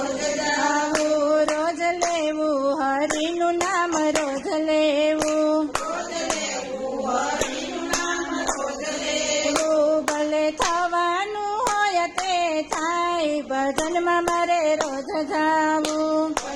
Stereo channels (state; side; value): identical; both; correlation 1.00